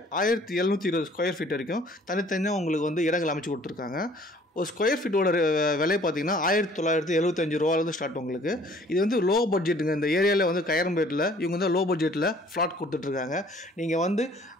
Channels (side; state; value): both; normal; correlation 0.55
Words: 1720 ஸ்கொயர் ஃபீட் வரைக்கும் தனித்தனியாக உங்களுக்கு வந்து இடங்கள் அமைச்சு கொடுத்துருக்காங்க. ஒரு ஸ்கொயர் ஃபீட்டோட விலை பார்த்தீங்கன்னா 1975 ரூபாலேருந்து ஸ்டார்ட். உங்களுக்கு இது வந்து லோ பட்ஜெட்டுங்க. இந்த ஏரியாவில் வந்து கையரம்பேட்டில் இவங்க வந்து லோ பட்ஜெட்டில் ஃப்ளாட் கொடுத்துட்ருக்காங்க. நீங்கள் வந்து